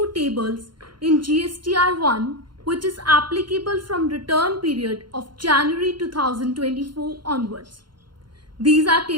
tables in GSTR1 which is applicable from return period of January 2024 onwards. These are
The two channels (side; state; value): left; late; 0.72 ms